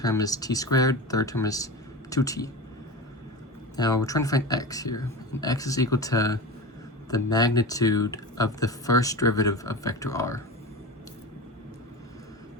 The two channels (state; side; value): normal; both; correlation 0.27